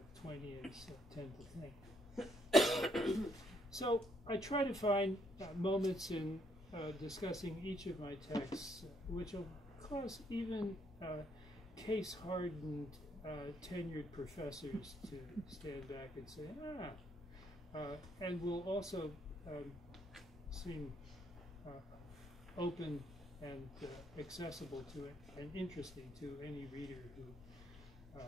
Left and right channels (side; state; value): both; normal; correlation 0.71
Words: Twainians tend to think. So I try to find moments in discussing each of my texts which will cause even case-hardened tenured professors to stand back and say, and will also seem open and accessible to it and interesting to any reader who